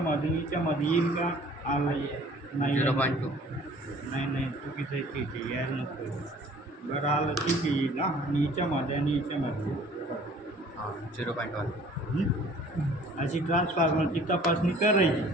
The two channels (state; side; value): normal; both; correlation 0.52